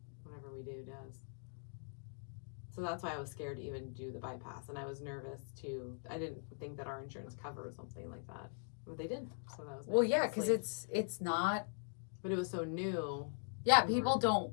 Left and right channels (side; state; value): right; silent; digital silence